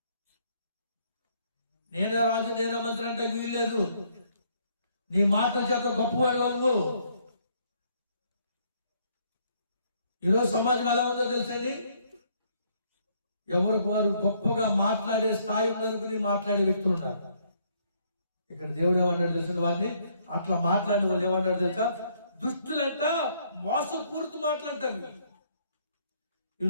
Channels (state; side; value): inverted; both; correlation -0.67